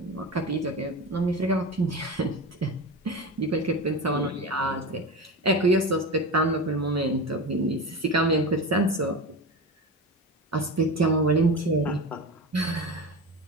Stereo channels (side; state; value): both; normal; correlation 0.25